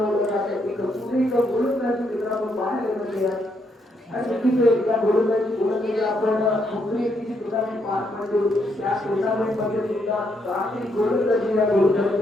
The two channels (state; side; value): normal; both; correlation 0.76